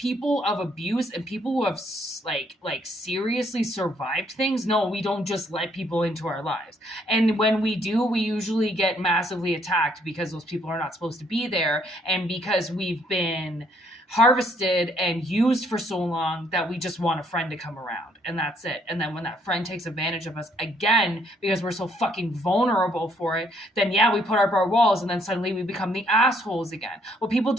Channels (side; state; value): both; normal; correlation 0.68